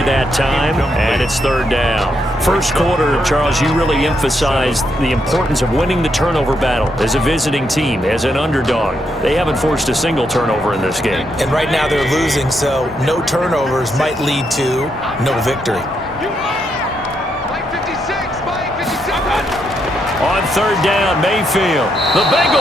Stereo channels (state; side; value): normal; both; correlation 0.79